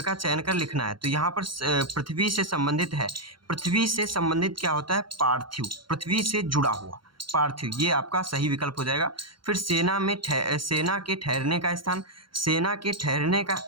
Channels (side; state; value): left; late; 0.73 ms